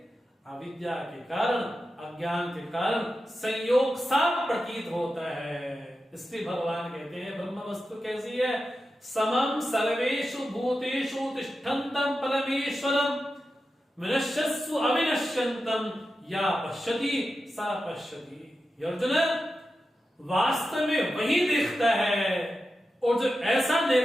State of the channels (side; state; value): both; normal; correlation 0.91